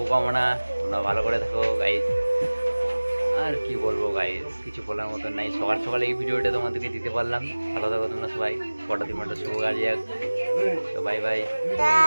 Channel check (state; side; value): inverted; both; correlation -1.00